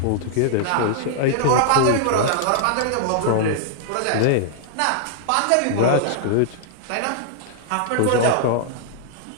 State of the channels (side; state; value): both; different; correlation -0.01